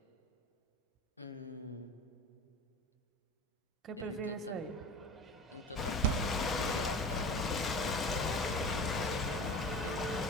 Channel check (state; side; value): normal; both; correlation 0.34